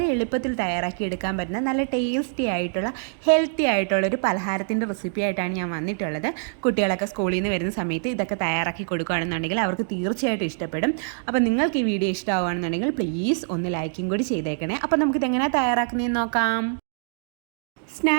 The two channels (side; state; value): left; silent; digital silence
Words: എളുപ്പത്തിൽ തയ്യാറാക്കിയെടുക്കാൻ പറ്റുന്ന നല്ല ടേസ്റ്റി ആയിട്ടുള്ള ഹെൽത്തി ആയിട്ടുള്ള ഒരു പലഹാരത്തിൻ്റെ റെസിപ്പി ആയിട്ടാണ് ഞാൻ വന്നിട്ടുള്ളത്. കുട്ടികളൊക്കെ സ്കൂളിൽ നിന്ന് വരുന്ന സമയത്ത് ഇതൊക്കെ തയ്യാറാക്കി കൊടുക്കുകയാണെന്നുണ്ടെങ്കിൽ അവർക്ക് തീർച്ചയായിട്ടും ഇഷ്ടപ്പെടും. അപ്പോൾ നിങ്ങൾക്ക് ഈ വീഡിയോ ഇഷ്ടമാവുകയാണെന്നുണ്ടെങ്കിൽ പ്ലീസ് ഒന്ന് ലൈക്കും കൂടി ചെയ്തേക്കണേ. അപ്പോൾ നമുക്കിതെങ്ങനെയാണ് തയ്യാറാക്കുന്നതെന്ന് നോക്കാം.